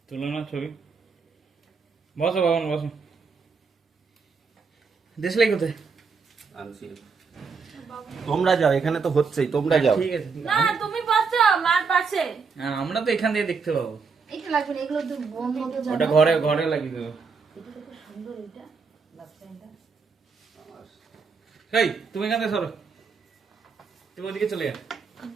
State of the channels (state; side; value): quieter; left; 5.1 dB